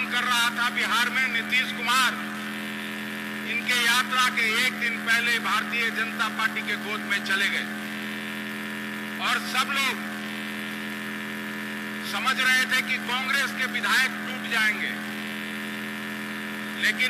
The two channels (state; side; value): identical; both; correlation 1.00